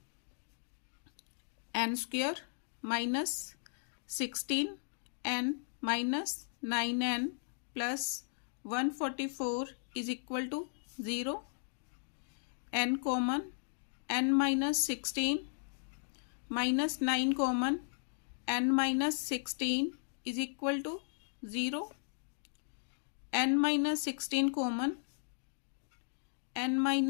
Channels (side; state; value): right; silent; digital silence